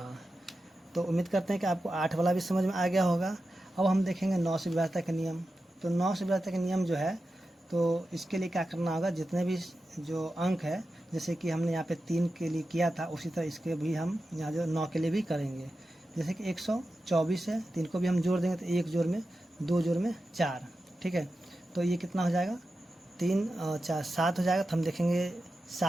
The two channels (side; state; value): both; normal; correlation 0.91